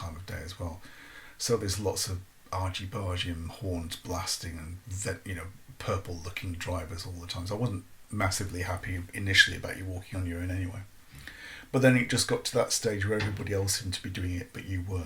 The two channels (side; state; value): both; identical; correlation 1.00